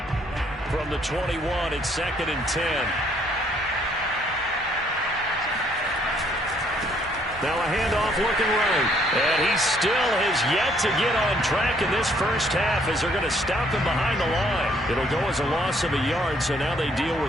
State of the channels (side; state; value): both; normal; correlation 0.66